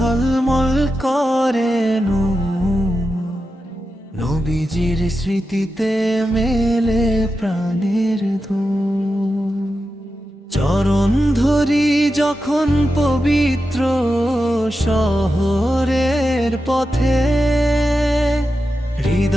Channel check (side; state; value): both; normal; correlation 0.90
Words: করে নবীজির স্মৃতিতে মেলে প্রাণের দোল। চরণ ধরি যখন পবিত্র শহরের পথে,